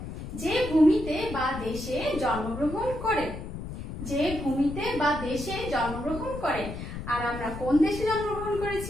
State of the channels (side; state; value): left; noise; rumble, 8 dB below the sound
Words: যে ভূমিতে বা দেশে জন্মগ্রহণ করে, যে ভূমিতে বা দেশে জন্মগ্রহণ করে। আর আমরা কোন দেশে জন্মগ্রহণ